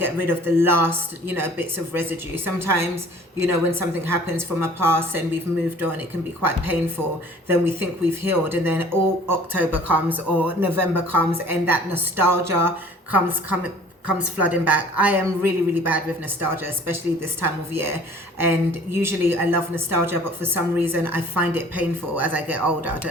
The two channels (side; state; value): both; normal; correlation 0.50